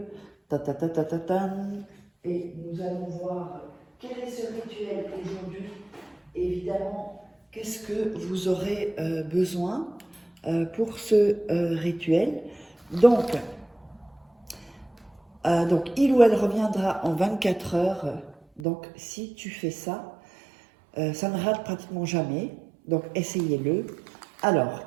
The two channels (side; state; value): left; drops out; at 18.7 s